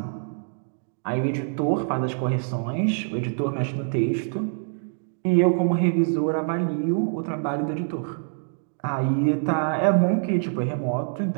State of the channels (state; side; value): silent; left; digital silence